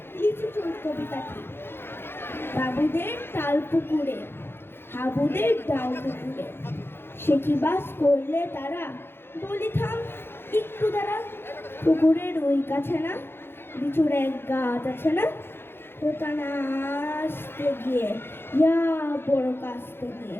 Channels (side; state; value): right; late; 0.11 ms